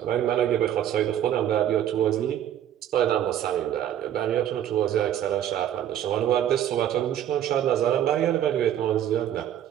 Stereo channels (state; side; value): quieter; left; 10.8 dB